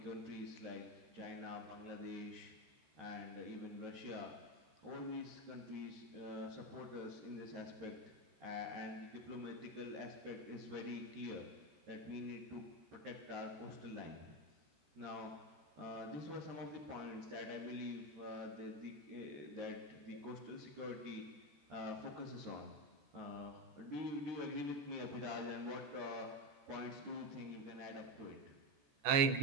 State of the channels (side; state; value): left; late; 14 ms